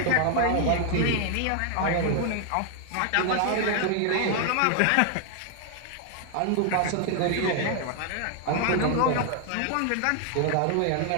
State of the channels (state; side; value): different; both; correlation 0.00